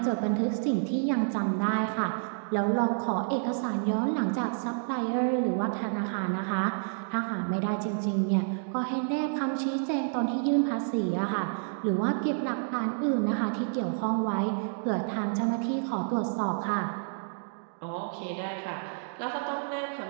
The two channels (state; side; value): silent; left; digital silence